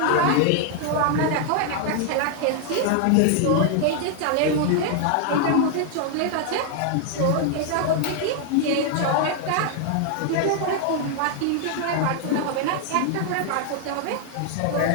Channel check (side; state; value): both; different; correlation 0.00